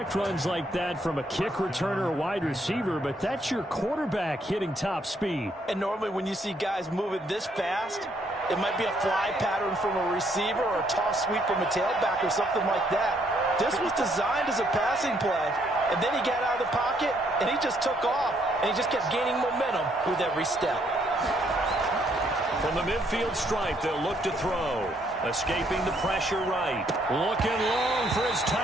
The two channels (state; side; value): normal; both; correlation 0.70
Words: runs like that from a kick returner or wide receiver, but that's your quarterback hitting top speed. And normally when you see guys moving this fast, it might be a fly pattern from a receiver or a toss sweep from a tailback or something like that. This was designed as a passing play, and then he got out of the pocket, and he just took off, and he just kept gaining momentum with every step. From the midfield stripe, they'll look to throw. Escaping the pressure right. Looking long for his